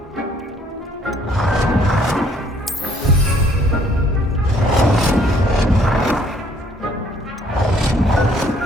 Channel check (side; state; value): both; normal; correlation 0.62